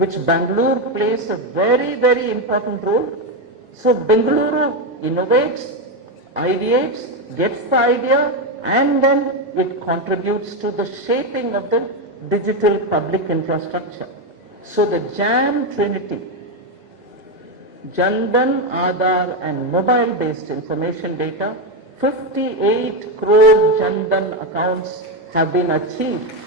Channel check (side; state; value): both; normal; correlation 0.09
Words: Bengaluru plays a very, very important role. So Bengaluru innovates, ideates, gets the idea, and then it contributes to the shaping of the digital public infrastructure. So the JAM Trinity, Jandan, Aadhaar and mobile-based information data, 58 crore Jandan accounts have been achieved.